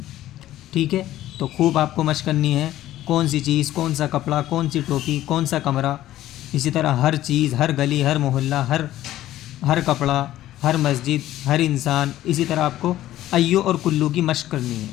ٹھیک ہے، تو خوب آپ کو مشق کرنی ہے، کون سی چیز، کون سا کپڑا، کون سی ٹوپی، کون سا کمرہ، اسی طرح ہر چیز، ہر گلی، ہر محلہ، ہر کپڑا، ہر مسجد، ہر انسان، اسی طرح آپ کو ایو اور کلو کی مشق کرنی ہے۔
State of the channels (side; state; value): right; quieter; 14.0 dB